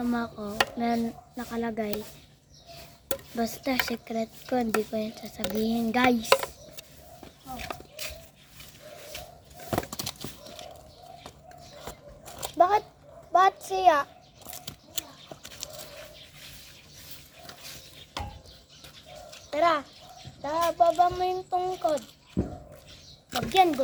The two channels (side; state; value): both; identical; correlation 1.00